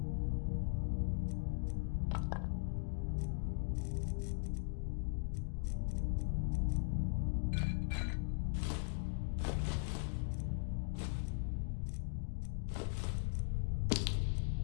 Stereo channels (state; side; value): silent; right; digital silence